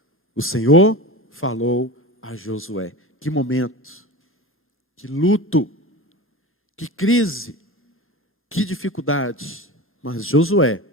O Senhor falou a Josué. Que momento, que luto, que crise, que dificuldade. Mas Josué,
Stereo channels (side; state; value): both; normal; correlation 0.30